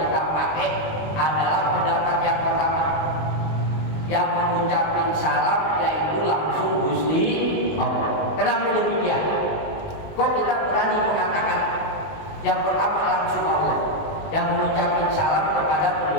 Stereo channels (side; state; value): right; late; 19 ms